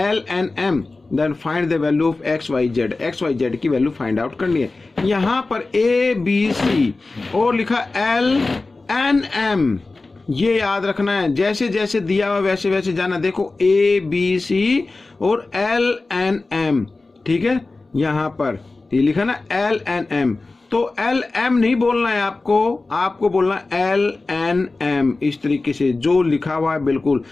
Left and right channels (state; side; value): quieter; right; 3.4 dB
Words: then find the value of XYZ की वैल्यू फाइंड आउट करनी है। यहाँ पर ABC और लिखा LNM, ये याद रखना है। जैसे जैसे दिया हुआ वैसे वैसे जाना। देखो ABC और LNM, ठीक है, यहाँ पर ये लिखा ना LNM, तो LM नहीं बोलना है आपको बोलना LNM इस तरीके से जो लिखा हुआ है। बिल्कुल